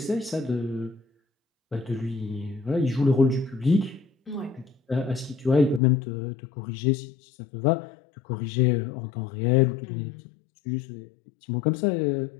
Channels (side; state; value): right; drops out; at 5.8 s